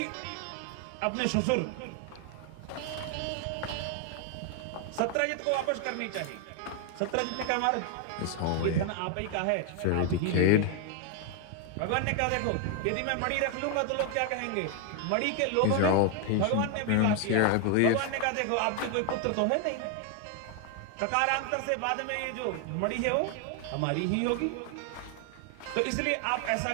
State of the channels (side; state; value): both; different; correlation 0.01